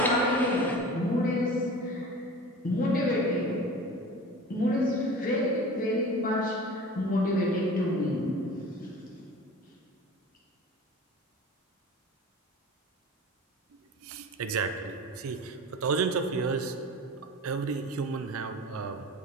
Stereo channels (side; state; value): both; normal; correlation 0.38